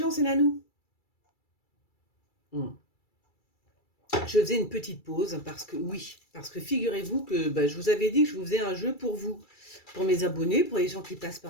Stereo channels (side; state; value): right; late; 2.3 ms